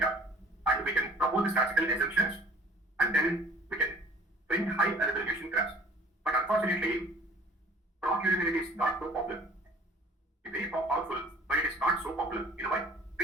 and we can propose the statistical assumptions, and then we can print high resolution graphs. But unfortunately, proc univariate is not so popular. It's very powerful, but it is not so popular. You know why?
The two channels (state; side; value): normal; both; correlation 0.51